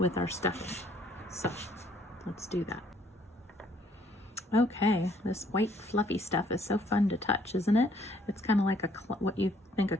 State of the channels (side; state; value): both; normal; correlation 0.64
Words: our stuffing. So let's do that. Okay, this white fluffy stuff is so fun to touch, isn't it? It's kind of like what you think a